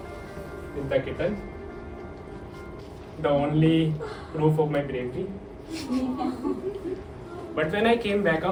with the kitten, the only proof of my bravery. But when I came back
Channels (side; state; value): both; identical; correlation 1.00